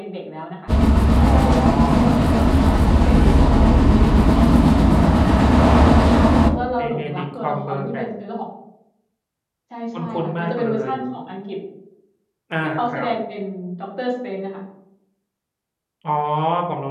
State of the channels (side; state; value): both; identical; correlation 1.00